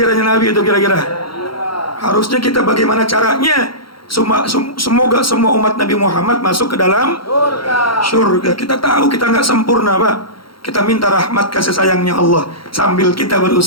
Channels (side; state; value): right; late; 0.73 ms